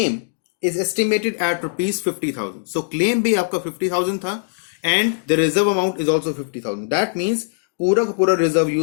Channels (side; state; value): right; silent; digital silence